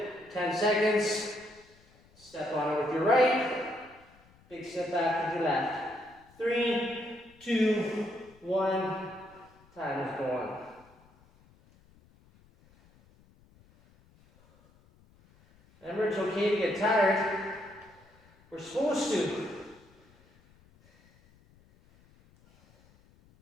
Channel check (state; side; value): noise; left; rumble, 29 dB below the sound